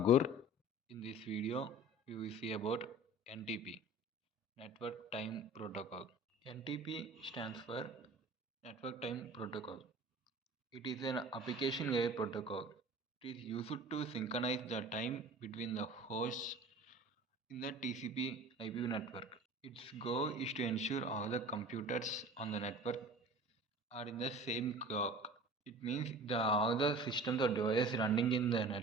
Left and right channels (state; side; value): normal; both; correlation 0.41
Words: In this video, we will see about NTP, Network Time Protocol. NTP stands for Network Time Protocol. It is an application layer protocol. It is used to synchronize the time between the hosts in the TCP IP network. Its goal is to ensure all the computers on the network are in the same clock. It means all the systems or devices running in the